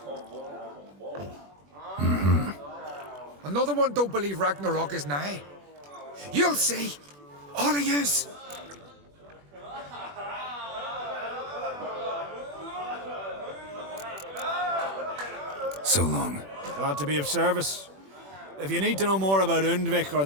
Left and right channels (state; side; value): late; left; 21 ms